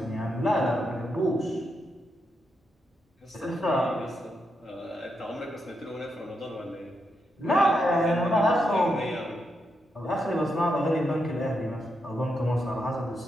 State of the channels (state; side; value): normal; both; correlation 0.83